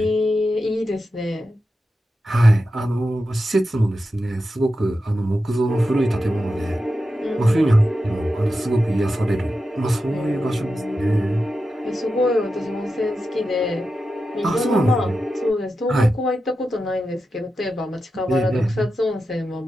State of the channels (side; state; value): both; normal; correlation 0.90